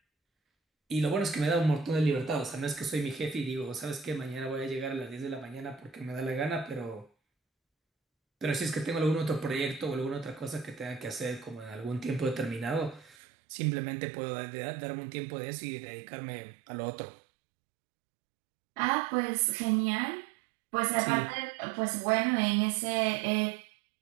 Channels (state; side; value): drops out; left; at 13.2 s